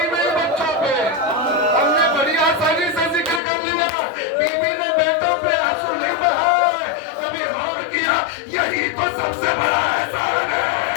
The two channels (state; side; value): drops out; right; at 3.4 s